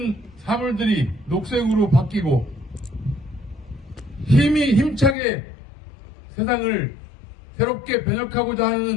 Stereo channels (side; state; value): right; drops out; at 5.2 s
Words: 사물들이 녹색으로 바뀌고 힘차게 세상을 새롭게 변혁하고자